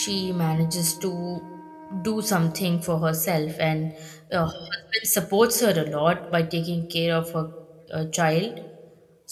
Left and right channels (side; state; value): both; identical; correlation 1.00